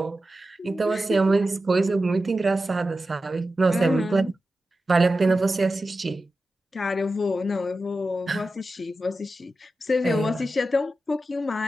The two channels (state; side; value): normal; both; correlation 0.92